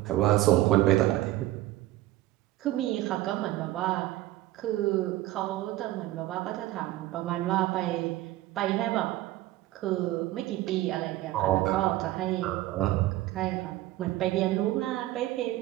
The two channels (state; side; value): quieter; left; 16.0 dB